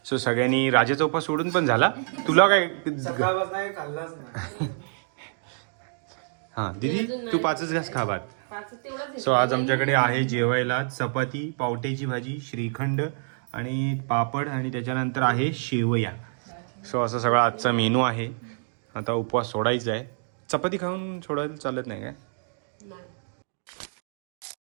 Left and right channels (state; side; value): silent; left; digital silence